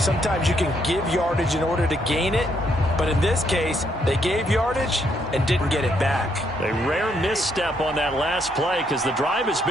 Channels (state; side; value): normal; both; correlation 0.73